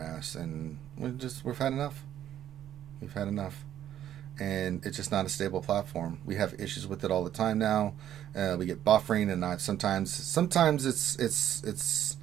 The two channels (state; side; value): quieter; left; 11.1 dB